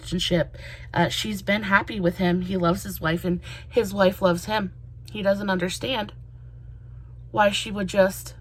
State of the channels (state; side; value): identical; both; correlation 1.00